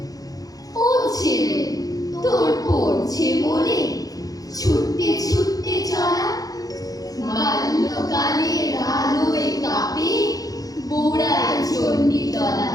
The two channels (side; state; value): right; late; 0.18 ms